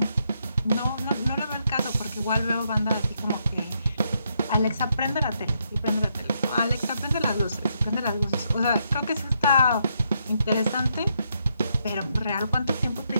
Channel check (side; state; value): both; inverted; correlation -0.78